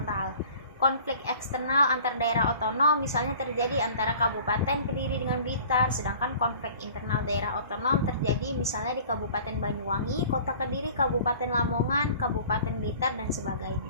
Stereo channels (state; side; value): inverted; both; correlation -0.47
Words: Konflik eksternal antar daerah otonom misalnya terjadi antara Kabupaten Kediri dengan Blitar, sedangkan konflik internal daerah otonom terjadi misalnya di Kabupaten Banyuwangi, Kota Kediri, Kabupaten Lamongan, Kabupaten Blitar, dan